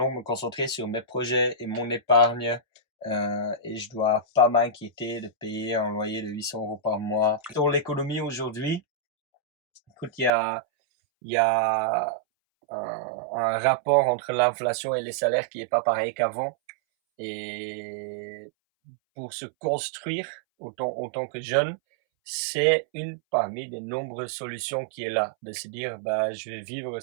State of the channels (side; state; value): left; drops out; at 10.3 s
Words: me concentrer sur mes projets et mon épargne. Et je dois pas m'inquiéter de payer un loyer de 800 € par mois. Dans l'économie aujourd'hui, écoute, il y a un rapport entre l'inflation et les salaires qui est pas pareil qu'avant. Et pour se construire en tant que jeune, c'est une parmi des nombreuses solutions qui est là. De se dire, bah, je vais vivre